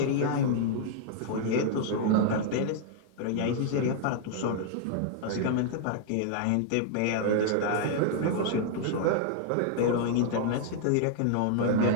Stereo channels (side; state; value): both; different; correlation -0.01